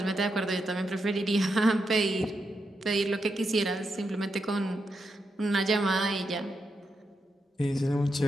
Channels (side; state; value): both; normal; correlation 0.84